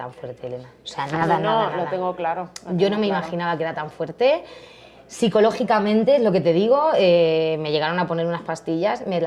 fuerte, Elena. O sea, nada, No, nada, lo nada. tengo claro. lo Yo tengo no me claro. imaginaba que era tan fuerte. Psicológicamente, es lo que te digo, me llegaron a poner unas pastillas, me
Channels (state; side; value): identical; both; correlation 1.00